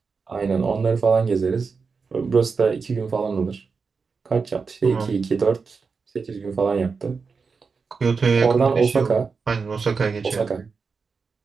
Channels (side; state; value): left; quieter; 5.0 dB